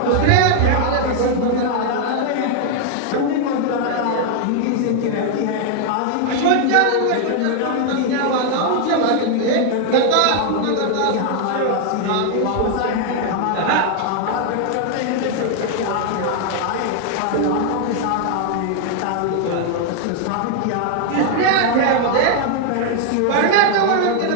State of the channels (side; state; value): both; different; correlation 0.00